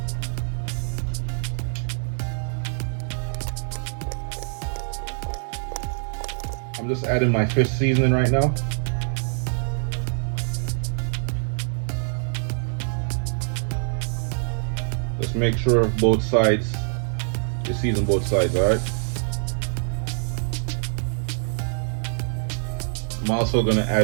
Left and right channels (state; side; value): silent; left; 59 dB below the other